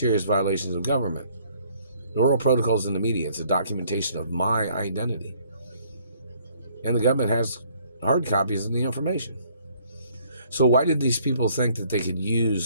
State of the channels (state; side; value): inverted; both; correlation -0.62